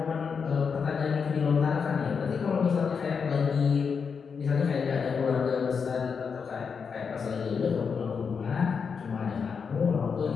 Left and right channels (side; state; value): right; quieter; 6.0 dB